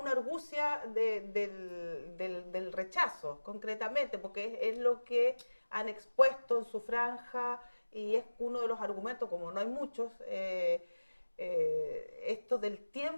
argucia del rechazo, concretamente, porque es lo que han expuesto en su franja y es uno de los argumentos, como no hay muchos, esto del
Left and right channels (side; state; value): both; inverted; correlation -1.00